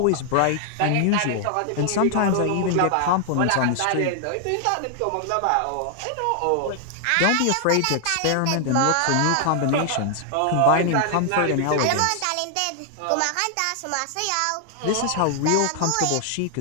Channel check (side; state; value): both; different; correlation 0.00